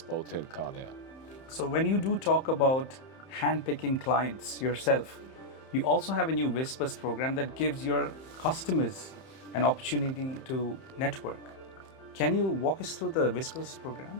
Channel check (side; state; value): right; late; 31 ms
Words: Bowtail car there. So when you do talk about handpicking clients yourself, you also have a new Whispers program that gives your customers an opportunity to network. Can you walk us through the Whispers